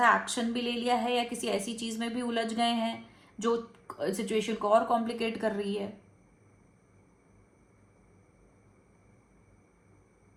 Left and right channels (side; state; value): both; identical; correlation 1.00